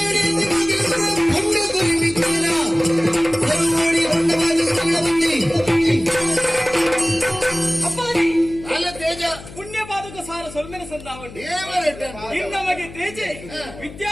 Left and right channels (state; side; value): noise; left; hum, 16 dB below the sound